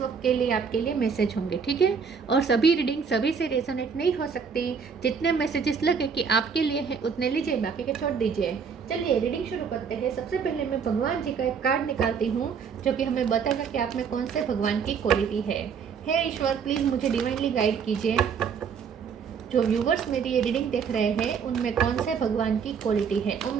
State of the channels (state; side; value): quieter; left; 6.3 dB